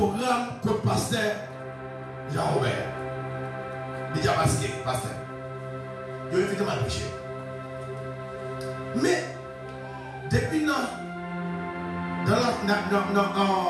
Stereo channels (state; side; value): identical; both; correlation 1.00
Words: comme pasteur Jean-Robert. Il dit à pasteur. Je vais mal prêcher. Mais, depuis non,